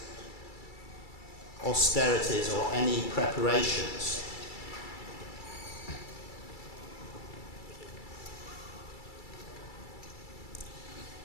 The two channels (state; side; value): late; right; 2.3 ms